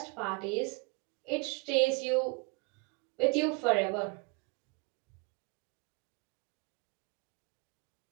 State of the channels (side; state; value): left; quieter; 30.8 dB